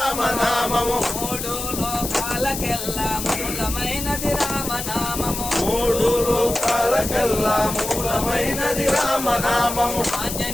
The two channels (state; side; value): noise; left; hiss, 6 dB below the sound